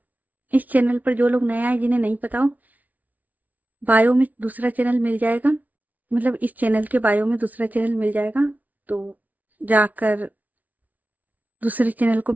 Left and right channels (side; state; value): left; late; 0.074 ms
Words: इस चैनल पर जो लोग नए आए जिन्हें नहीं पता हो, बायो में दूसरा चैनल मिल जाएगा, मतलब इस चैनल के बायो में दूसरा चैनल मिल जाएगा। तो जाकर दूसरे चैनल को